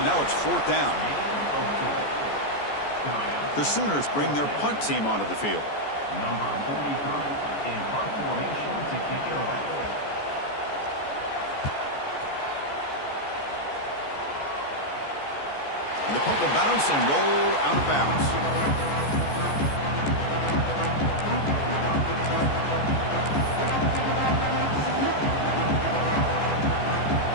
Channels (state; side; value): late; right; 14 ms